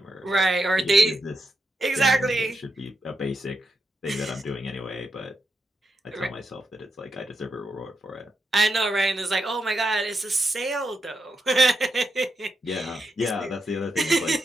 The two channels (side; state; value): both; normal; correlation 0.84